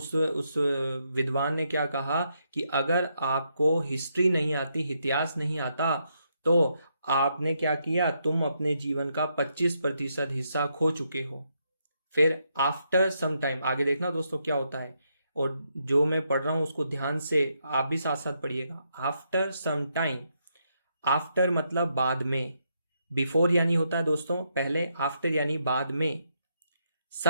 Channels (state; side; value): inverted; both; correlation -0.78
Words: विद्वान ने क्या कहा कि अगर आपको हिस्ट्री नहीं आती, इतिहास नहीं आता, तो आपने क्या किया, तुम अपने जीवन का 25% हिस्सा खो चुके हो। फिर आफ्टर सम टाइम, आगे देखना दोस्तों क्या होता है, और जो मैं पढ़ रहा हूं उसको ध्यान से आप भी साथ साथ पढ़िएगा। आफ्टर सम टाइम, आफ्टर मतलब बाद में, बिफोर यानी होता है दोस्तों पहले, आफ्टर यानी बाद में,